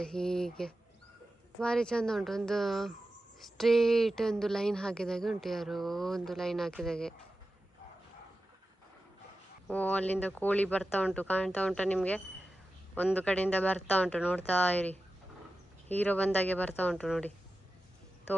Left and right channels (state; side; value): normal; both; correlation 0.93